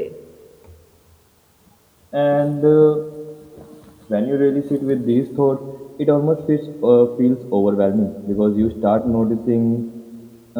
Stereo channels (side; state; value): both; identical; correlation 1.00